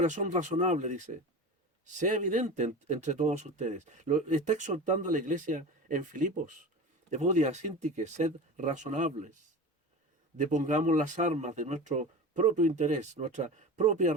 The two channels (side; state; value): both; normal; correlation 0.31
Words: razonable, dice, sea evidente entre todos ustedes. Lo está exhortando a la iglesia en Filipos. Evodia, Síntique, sed razonables. Depongamos las armas de nuestro propio interés, nuestra propia